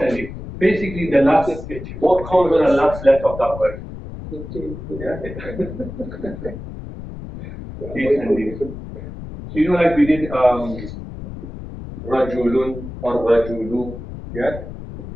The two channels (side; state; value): left; noise; rumble, 11 dB below the sound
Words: ending. Basically, the last, what comes on the last letter of that word? Yeah. Case ending. So you know, like we did, rajulun or rajulu, yeah?